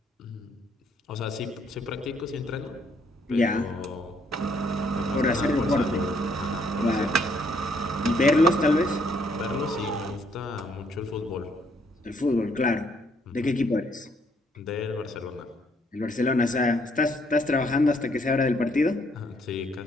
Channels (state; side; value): normal; both; correlation 0.69